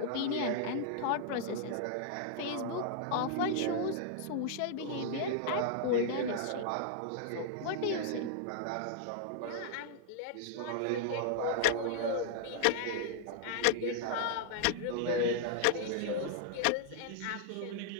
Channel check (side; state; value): both; different; correlation -0.01